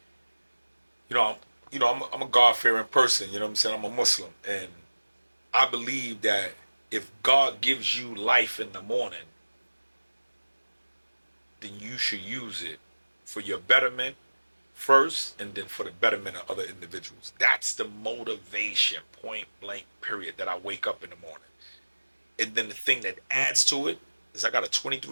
I'm a God-fearing person. You know what I'm saying? I'm a Muslim, and I believe that if God gives you life in the morning, then you should use it for your betterment first, and then for the betterment of other individuals. That's the motivation, point blank, period, that I wake up in the morning. And then the thing that adds to it is I got a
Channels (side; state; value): both; inverted; correlation -1.00